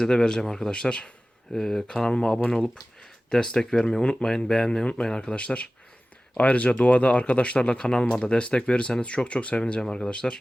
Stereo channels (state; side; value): normal; both; correlation 0.97